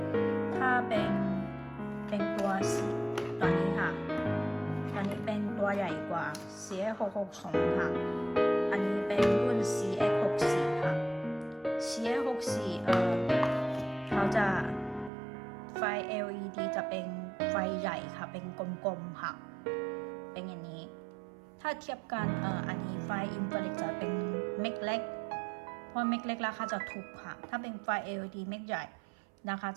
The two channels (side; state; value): left; drops out; at 15.1 s